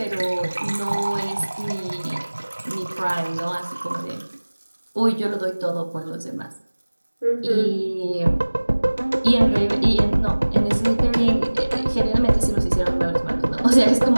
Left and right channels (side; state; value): both; inverted; correlation -1.00